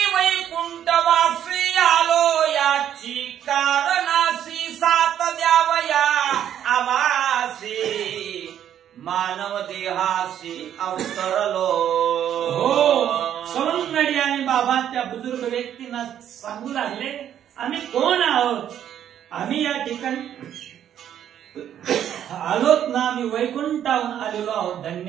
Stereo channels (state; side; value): quieter; left; 10.2 dB